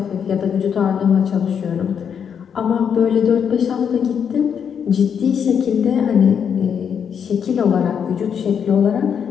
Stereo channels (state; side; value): quieter; right; 7.5 dB